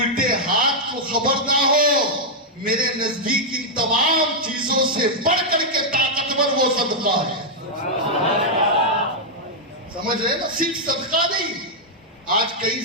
ہاتھ کو خبر نہ ہو۔ میرے نزدیک ان تمام چیزوں سے بڑھ کر کے طاقتور وہ صدقہ ہے۔ سمجھ رہے نا؟ صرف صدقہ نہیں، آج کئی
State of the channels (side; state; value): both; normal; correlation -0.05